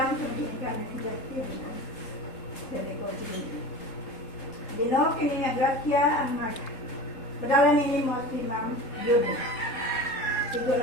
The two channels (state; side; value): late; right; 3.7 ms